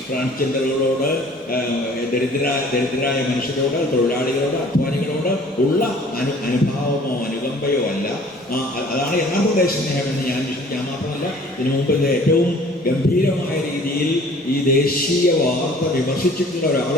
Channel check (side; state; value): both; normal; correlation 0.51